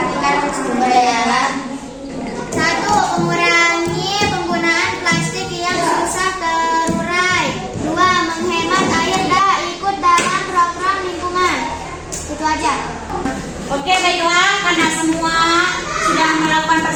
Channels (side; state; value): both; identical; correlation 1.00